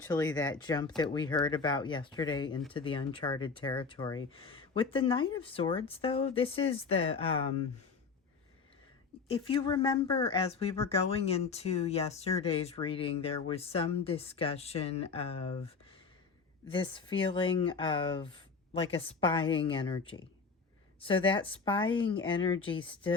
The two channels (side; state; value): right; quieter; 5.0 dB